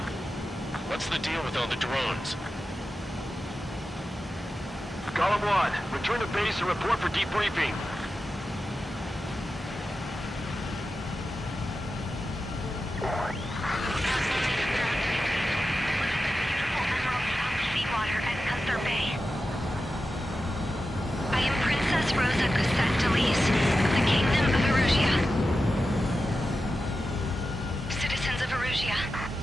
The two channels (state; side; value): normal; both; correlation 0.92